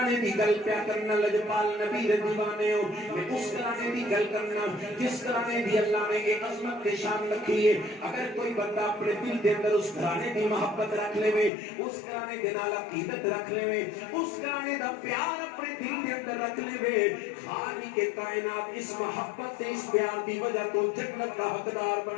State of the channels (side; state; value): right; drops out; at 11.5 s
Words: گلانے دی گل پیا کرنا لجپال نبی دے دیوانے ہو میں اس گلانے دی گل کرنا جس گلانے دی اللہ نے ایک عظمت کے شان رکھی ہے اگر کوئی بندہ اپنے دل دے اندر اس گلانے دی محبت رکھ لے وے اس گلانے دے نال عقیدت رکھ لے وے اس گلانے دا پیار اپنے دل دے اندر رکھ لے وے خالق کے کائنات اس محبت سے اس پیار دی وجہ تو جنت کا حقدار